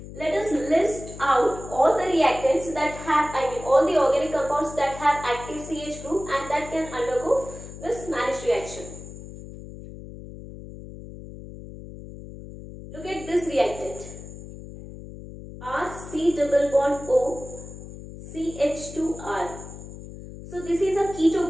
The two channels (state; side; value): noise; left; hum, 13 dB below the sound